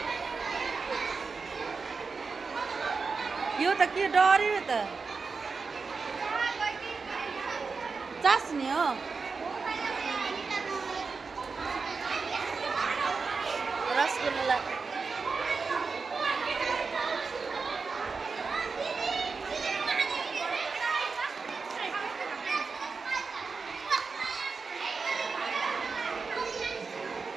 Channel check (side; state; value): left; quieter; 4.7 dB